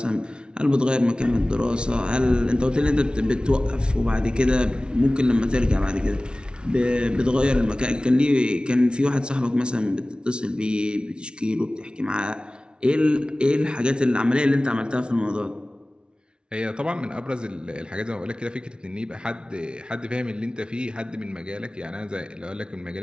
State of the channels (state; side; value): late; left; 0.056 ms